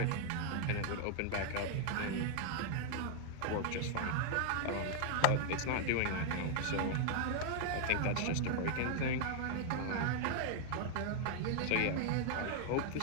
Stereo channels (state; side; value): different; both; correlation 0.00